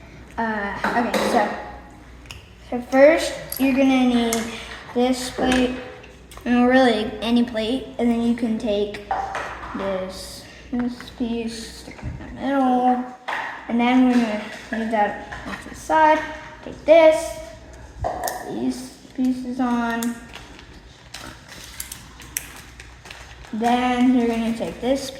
Okay, so first you're going to need this plate, and really any plate, and then you can take this piece, stick it in the middle, and then we're going to leave that off to the side. Take this, put these pieces on. Then you're going to take this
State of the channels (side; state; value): both; identical; correlation 1.00